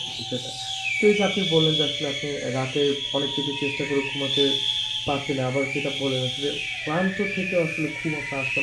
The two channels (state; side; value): identical; both; correlation 1.00